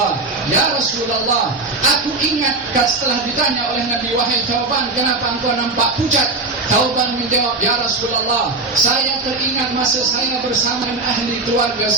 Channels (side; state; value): left; quieter; 3.4 dB